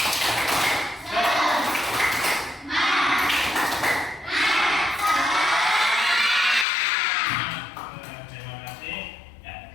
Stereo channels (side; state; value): right; drops out; at 6.7 s